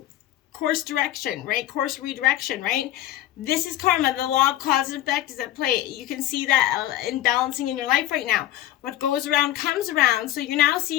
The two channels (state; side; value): quieter; right; 13.7 dB